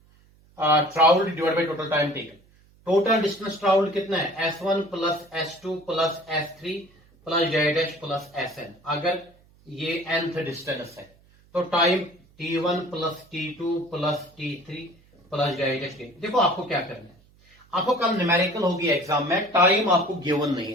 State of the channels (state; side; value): noise; right; hum, 30 dB below the sound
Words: travelled divide by total time taken, total distance travelled कितना है? S1 plus S2 plus S3 plus Z plus SN। अगर ये nth डिस्टेंस है तो time T1 plus T2 plus T3 plus Z। देखो आपको क्या करना है, आपको कल न्यूमेरिकल होगी एग्जाम में, टाइम आपको गिवन नहीं